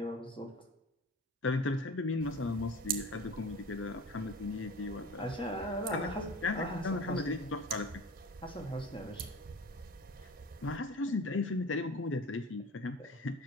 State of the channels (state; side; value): normal; both; correlation 0.38